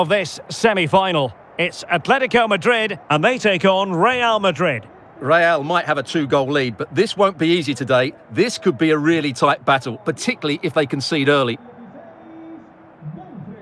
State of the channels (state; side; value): identical; both; correlation 1.00